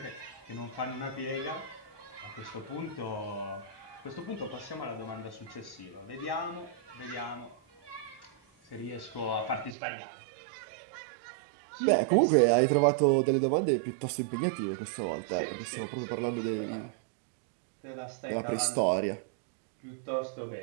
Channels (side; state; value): left; drops out; at 9.8 s